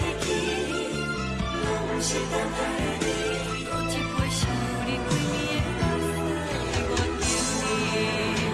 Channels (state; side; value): identical; both; correlation 1.00